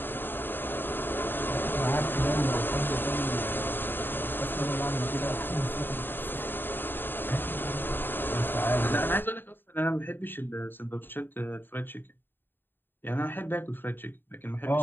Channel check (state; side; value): late; right; 0.097 ms